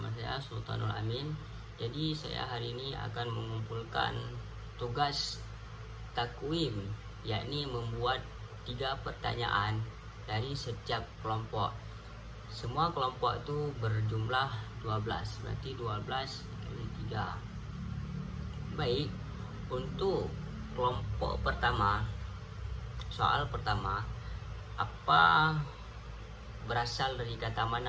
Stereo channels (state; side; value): identical; both; correlation 1.00